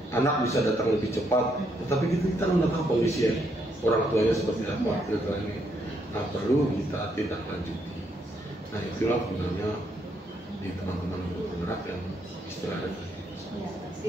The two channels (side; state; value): both; normal; correlation 0.75